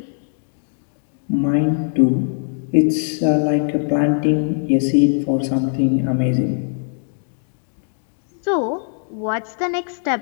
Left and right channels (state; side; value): silent; right; 65 dB below the other